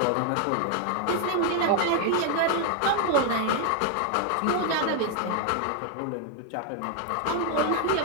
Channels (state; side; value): different; both; correlation 0.00